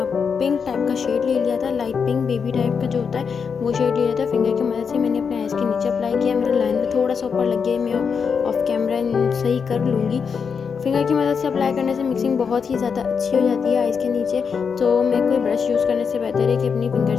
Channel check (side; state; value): right; quieter; 6.1 dB